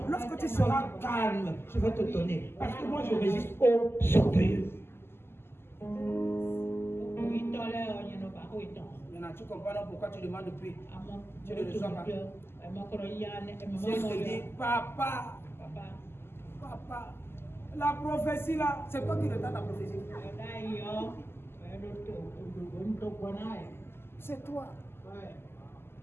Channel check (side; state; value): right; late; 0.12 ms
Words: Lorsque tu seras calme, je vais te donner. Parce que moi, je résiste aux orgueilleux. Maintenant, tu comprends pourquoi tu demandes depuis. Tu ne le reçois pas. Si je te dis, papa, la prophétie là, c'est toi qui retarde la prophétie. C'est toi.